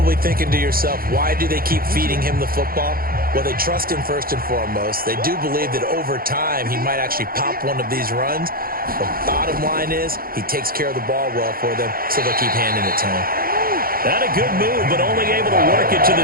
thinking to yourself, why do they keep feeding him the football? Well, they trust him first and foremost. They do believe that over time he might actually pop one of these runs. The bottom line is he takes care of the ball well for them, so they'll keep handing it to him. That a good move, but only able to work it to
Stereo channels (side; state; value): left; late; 0.42 ms